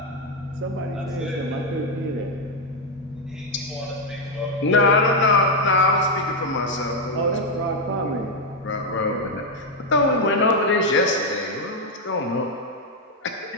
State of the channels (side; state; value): both; normal; correlation 0.03